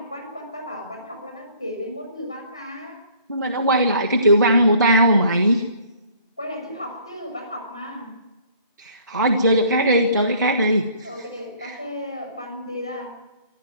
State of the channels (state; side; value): inverted; both; correlation -0.56